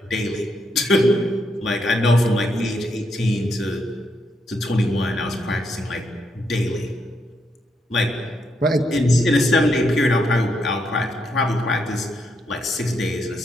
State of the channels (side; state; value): both; normal; correlation 0.79